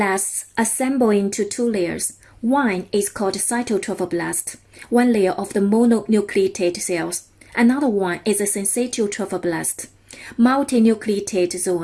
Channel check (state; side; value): identical; both; correlation 1.00